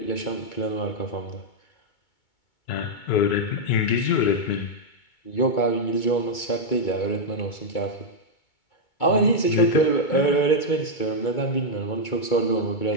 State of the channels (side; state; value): right; late; 2.2 ms